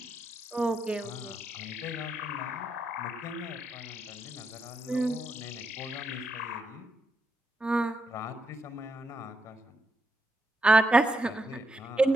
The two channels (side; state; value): both; normal; correlation 0.81